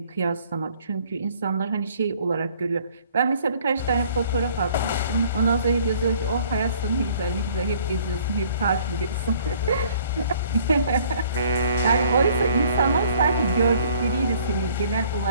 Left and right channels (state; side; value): inverted; both; correlation -0.58